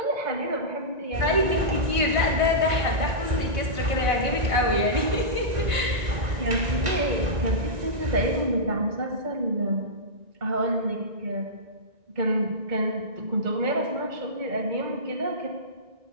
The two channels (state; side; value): late; left; 1.9 ms